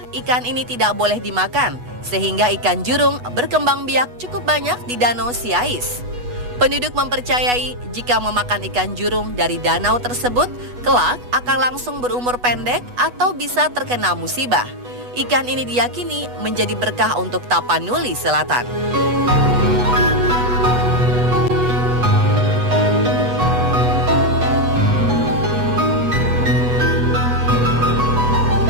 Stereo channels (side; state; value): left; late; 8.2 ms